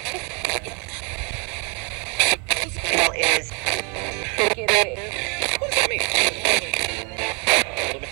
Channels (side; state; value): left; quieter; 33.9 dB